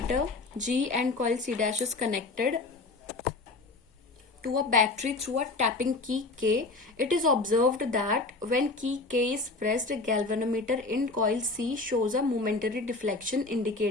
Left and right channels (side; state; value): right; quieter; 3.4 dB